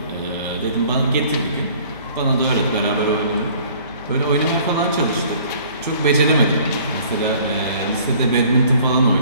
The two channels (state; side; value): inverted; both; correlation -0.54